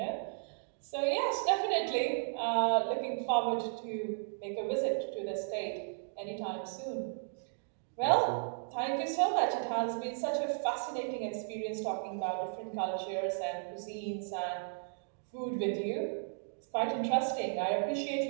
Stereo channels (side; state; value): left; silent; digital silence